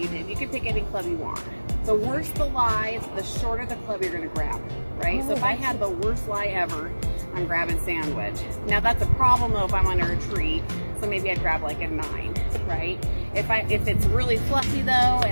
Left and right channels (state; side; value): inverted; both; correlation -1.00